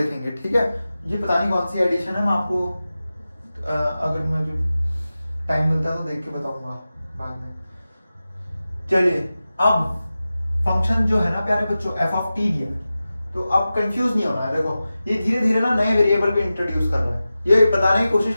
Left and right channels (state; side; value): inverted; both; correlation -0.95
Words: ठीक है। ये पता नहीं कौन सी एडिशन है, मैं आपको अगर मुझे टाइम मिलता है तो देख के बताऊंगा बाद में। चलिए अब फंक्शन जो है ना प्यारे बच्चों, एफ ऑफ टी दिया, तो अब कंफ्यूज नहीं होना है। देखो ये धीरे धीरे ना नए वेरिएबल भी इंट्रोड्यूस कर रहा है, ये बताने की कोशिश